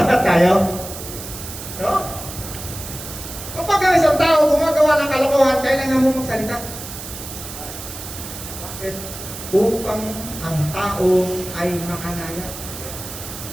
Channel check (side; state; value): right; noise; hiss, 11 dB below the sound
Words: tayo. No? Kapag ang isang tao gumagawa ng kalokohan, kailangan mo magsalita. Bakit? Upang ang tao ay makalaya.